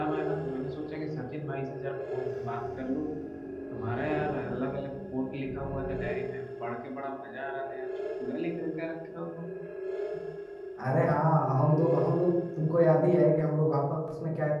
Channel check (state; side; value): identical; both; correlation 1.00